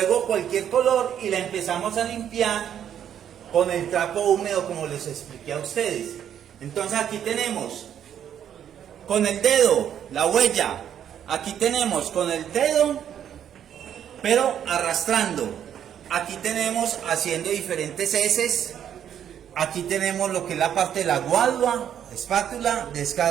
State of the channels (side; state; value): left; quieter; 9.5 dB